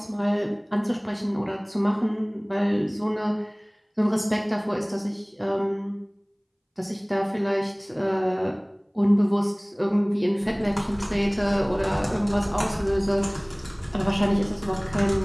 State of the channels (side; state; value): both; identical; correlation 1.00